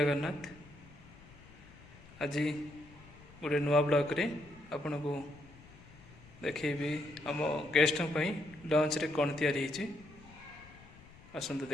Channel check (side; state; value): left; noise; rumble, 21 dB below the sound